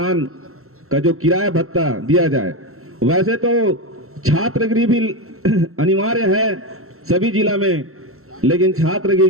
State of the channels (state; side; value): late; left; 0.63 ms